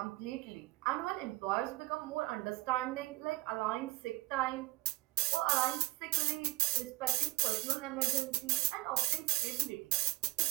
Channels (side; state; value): left; quieter; 21.1 dB